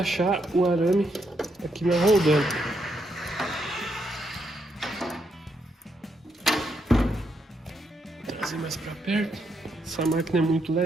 o arame aqui na roldana. Vou trazer mais para perto. Essa máquina é muito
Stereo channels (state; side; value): normal; both; correlation 0.78